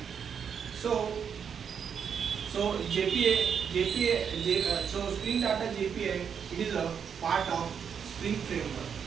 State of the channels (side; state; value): left; quieter; 7.3 dB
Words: So so Spring Data JPA, it is a part of Spring framework,